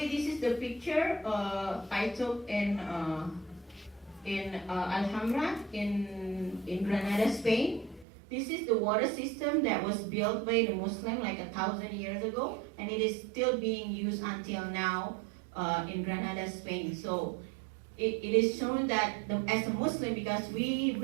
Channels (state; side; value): drops out; left; at 8.1 s